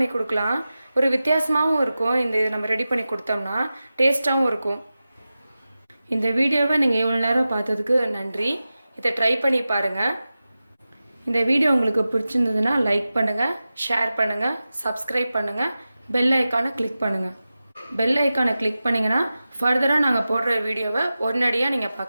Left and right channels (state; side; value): inverted; both; correlation -0.94